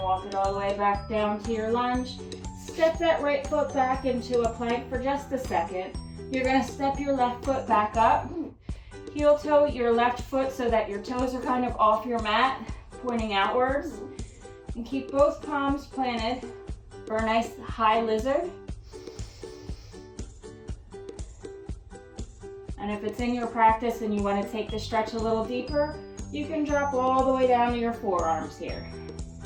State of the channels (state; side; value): identical; both; correlation 1.00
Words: walk it all the way back down to your lunge. Step that right foot back into a plank for just a second. You're going to step your left foot back up. Heel toe your left foot so that your toes are kind of off your mat, pointing outwards. And keep both palms planted for a nice high lizard. And if it's in your practice and you want to take the stretch a little deeper, you can drop all the way down to your forearms here.